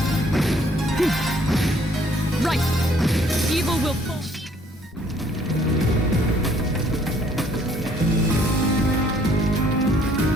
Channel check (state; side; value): normal; both; correlation 0.62